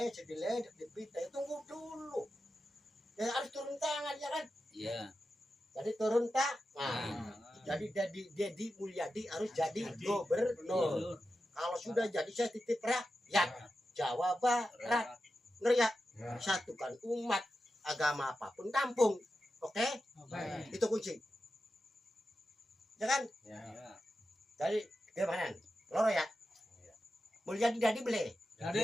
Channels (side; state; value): both; normal; correlation 0.91